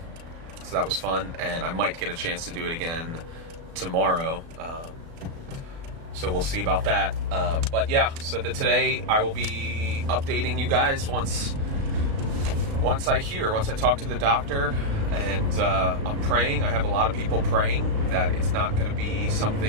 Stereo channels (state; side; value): late; left; 36 ms